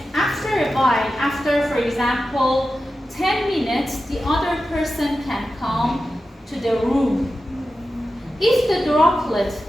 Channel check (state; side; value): normal; both; correlation 0.92